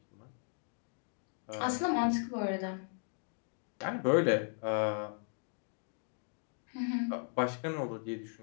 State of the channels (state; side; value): silent; right; 53 dB below the other